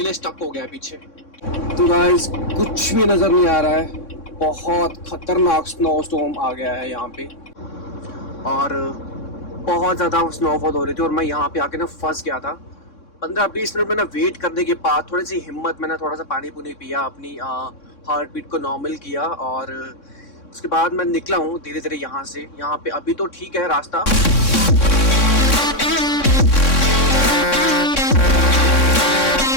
स्टक हो गया है पीछे। तो गाइस कुछ भी नज़र नहीं आ रहा है, बहुत खतरनाक स्नो स्टॉर्म आ गया है यहाँ पे और बहुत ज़्यादा स्नोफॉल हो रही थी और मैं यहाँ पे आके ना फंस गया था। 15-20 मिनट मैंने वेट करने के बाद थोड़ी सी हिम्मत, मैंने थोड़ा सा पानी पुनी पिया, अपनी हार्ट बीट को नॉर्मल किया और उसके बाद मैं निकला हूँ धीरे धीरे यहाँ से। यहाँ पे अभी तो ठीक है रास्ता,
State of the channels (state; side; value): late; right; 3.6 ms